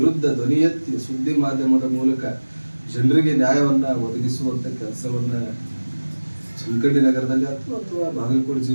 ಧ್ವನಿ ಎತ್ತಿ ಸುದ್ದಿ ಮಾಧ್ಯಮದ ಮೂಲಕ ಜನರಿಗೆ ನ್ಯಾಯವನ್ನು ಒದಗಿಸುವಂಥ ಕೆಲಸವನ್ನು ಚನ್ನಕಂಡಿ ನಗರದಲ್ಲಿ ಅಥವಾ ಬಾಗಲಕೋಟೆ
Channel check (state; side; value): inverted; both; correlation -1.00